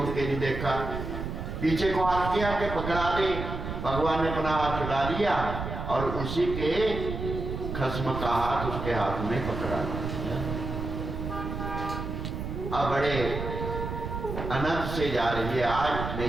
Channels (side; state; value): right; noise; rumble, 5 dB below the sound